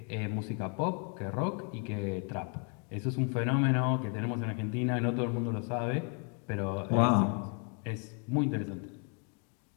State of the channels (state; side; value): quieter; right; 39.0 dB